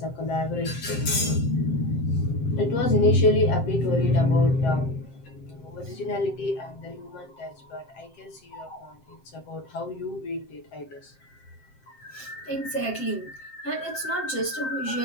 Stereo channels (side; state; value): right; late; 7.7 ms